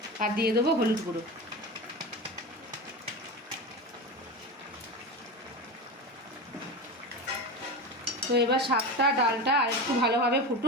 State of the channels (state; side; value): normal; both; correlation 0.24